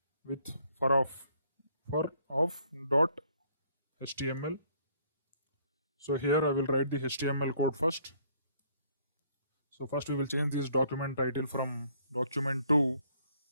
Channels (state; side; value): inverted; both; correlation -0.64